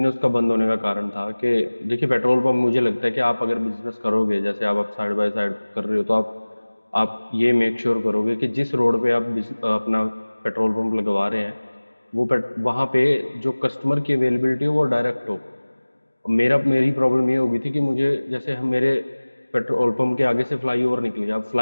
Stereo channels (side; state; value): both; inverted; correlation -1.00